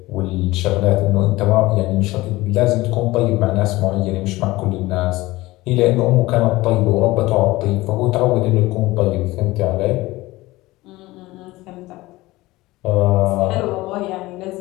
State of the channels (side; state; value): right; quieter; 19.3 dB